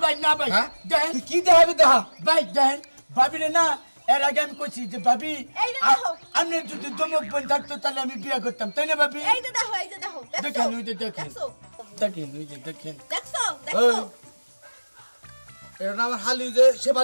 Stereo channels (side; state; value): both; inverted; correlation -1.00